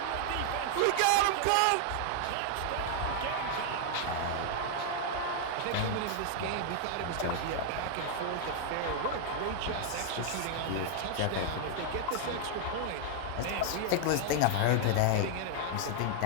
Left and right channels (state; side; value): different; both; correlation 0.00